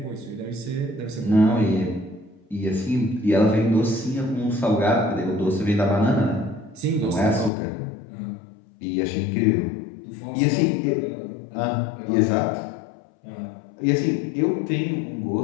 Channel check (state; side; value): drops out; right; at 7.5 s